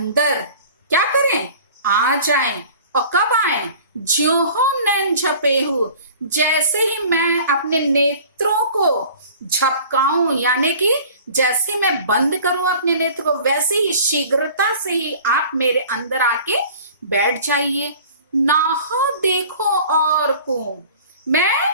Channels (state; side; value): inverted; both; correlation -0.45